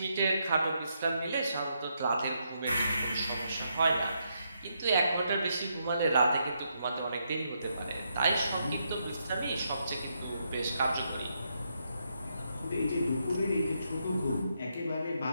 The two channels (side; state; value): both; inverted; correlation -0.79